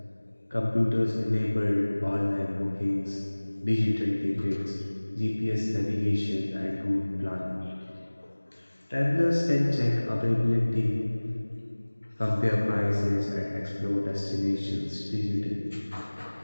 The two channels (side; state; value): both; inverted; correlation -1.00